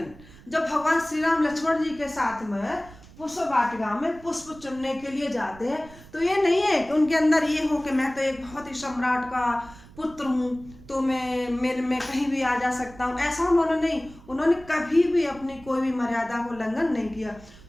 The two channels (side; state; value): right; noise; rumble, 21 dB below the sound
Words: जब भगवान श्री राम लक्ष्मण जी के साथ में पुष्प वाटिका में पुष्प चुनने के लिए जाते हैं तो ये नहीं है कि उनके अंदर ये हो कि मैं तो एक बहुत ही सम्राट का पुत्र हूँ तो मैं कहीं भी आ जा सकता हूँ, ऐसा उन्होंने कभी भी अपनी कोई भी मर्यादा को उल्लंघन नहीं किया।